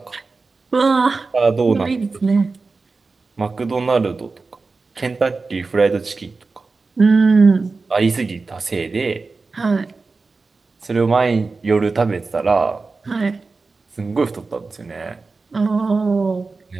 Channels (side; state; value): left; quieter; 4.0 dB